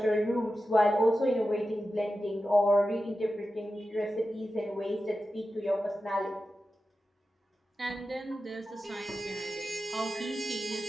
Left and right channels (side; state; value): both; normal; correlation 0.92